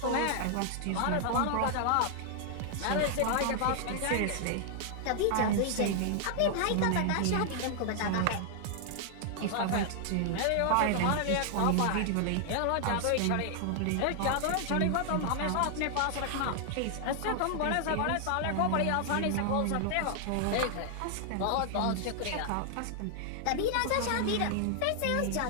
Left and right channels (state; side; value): different; both; correlation 0.00